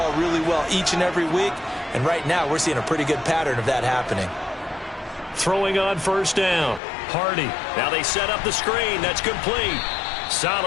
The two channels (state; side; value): drops out; right; at 6.8 s